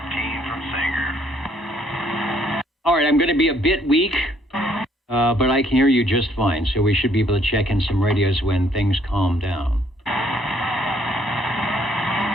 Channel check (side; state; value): both; normal; correlation 0.65